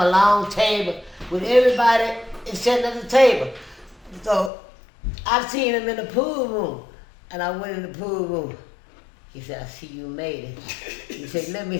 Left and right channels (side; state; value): right; drops out; at 4.5 s